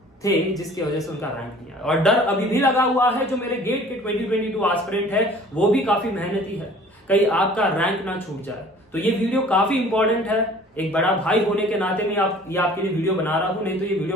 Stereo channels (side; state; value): both; normal; correlation 0.49